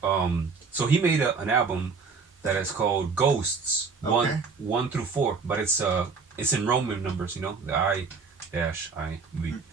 So he made an album that is called Ghosts, Okay. 1 through 4, but it's in Roman numbers, the I-V.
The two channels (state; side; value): quieter; left; 4.9 dB